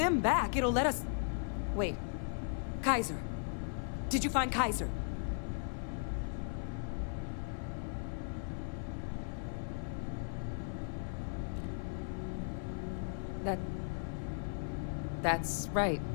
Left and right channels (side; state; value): right; silent; 53 dB below the other